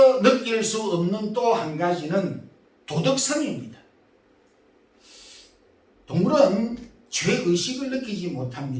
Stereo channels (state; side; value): identical; both; correlation 1.00